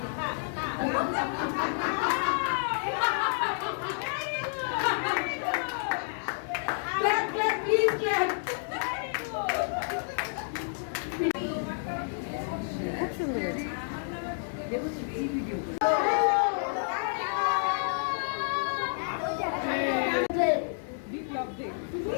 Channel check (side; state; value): right; silent; digital silence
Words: Clap, clap, please clap. খুব সুন্দর হয়েছে।